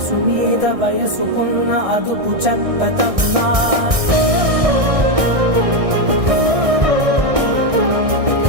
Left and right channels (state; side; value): late; left; 1.6 ms